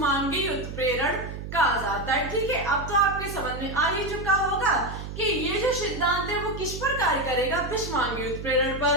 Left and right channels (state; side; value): noise; right; hum, 8 dB below the sound